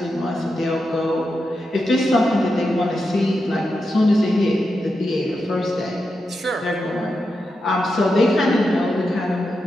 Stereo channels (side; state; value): both; normal; correlation 0.87